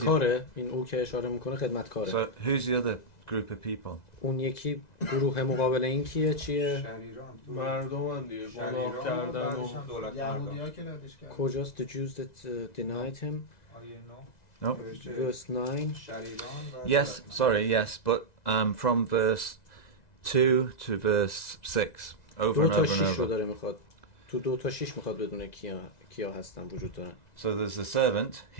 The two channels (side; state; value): right; late; 2.0 ms